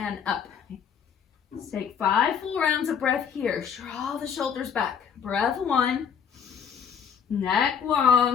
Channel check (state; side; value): quieter; right; 7.4 dB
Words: up. Let's take 5 full rounds of breath here. Draw the shoulders back. Breath 1, neck